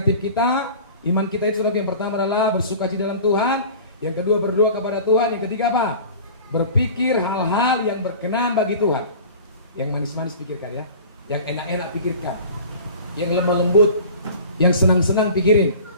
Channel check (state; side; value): inverted; both; correlation -0.41